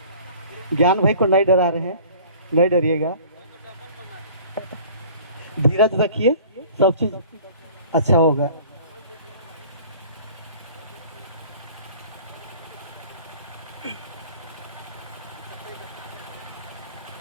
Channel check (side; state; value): both; inverted; correlation -0.47